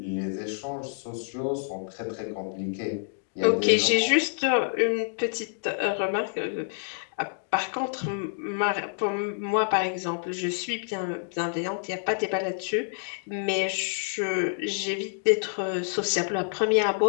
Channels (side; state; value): right; silent; digital silence